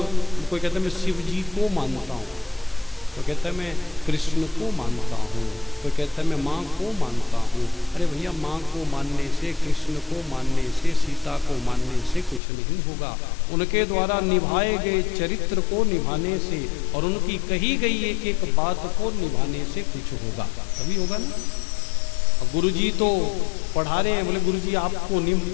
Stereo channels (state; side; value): drops out; right; at 12.4 s